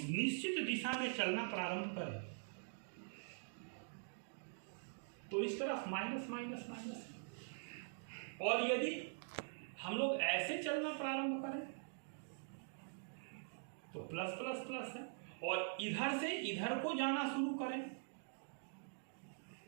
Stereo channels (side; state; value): left; silent; digital silence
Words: निश्चित दिशा में चलना प्रारंभ करें तो इस तरफ माइनस माइनस माइनस, और यदि हम लोग ऐसे चलना प्रारंभ करें तो प्लस प्लस प्लस है, और इधर से इधर को जाना शुरू करें